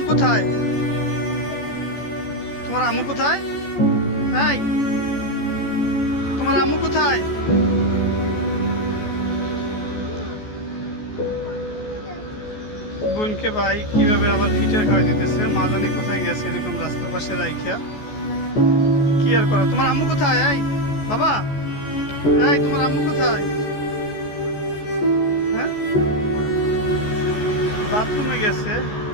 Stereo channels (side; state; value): right; late; 14 ms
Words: কোথায়? তোমার আম্মু কোথায়? এই তোমার আম্মু কোথায়? বোনকে ভাই কিভাবে আবার ফিটার খাওয়াই দিতেছে, মা জানি কোথায় গেছে এরকম রাস্তার পাশে রাইখা। কি আর করো? তোমার আম্মু কোথায়? এই বাবা, এই তোমার আম্মু কোথায়? হ্যাঁ, বাথরুমে গেছে।